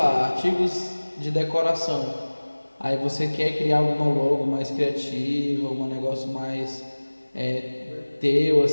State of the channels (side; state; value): both; inverted; correlation -1.00